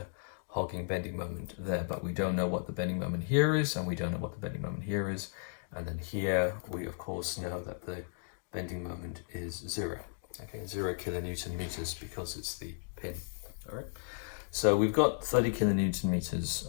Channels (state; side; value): silent; right; digital silence